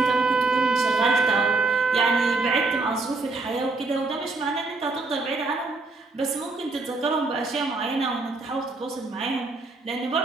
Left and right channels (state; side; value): quieter; left; 3.4 dB